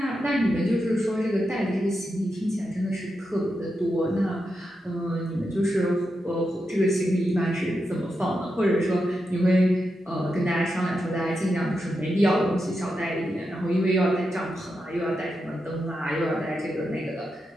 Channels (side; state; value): both; normal; correlation 0.87